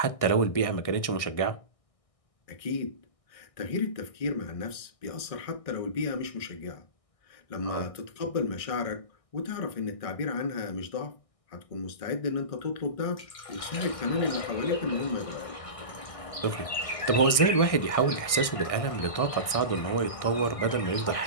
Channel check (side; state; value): right; late; 1.6 ms